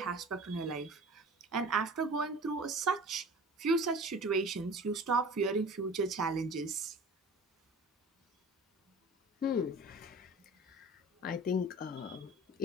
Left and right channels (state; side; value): normal; both; correlation 0.41